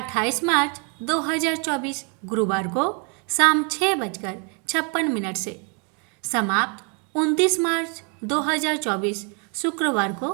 मार्च 2024 गुरुवार को शाम 6:56 से समाप्त 29 मार्च 2024 शुक्रवार को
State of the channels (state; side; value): quieter; left; 36.2 dB